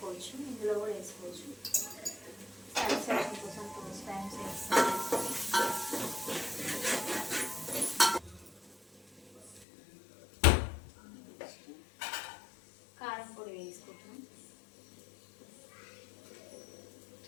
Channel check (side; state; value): right; drops out; at 9.7 s